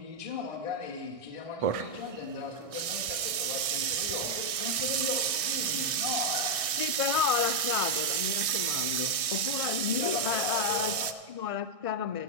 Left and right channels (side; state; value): left; late; 1.6 ms